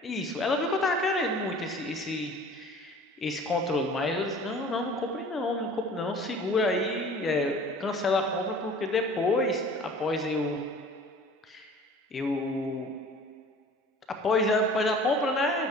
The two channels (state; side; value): normal; both; correlation 0.45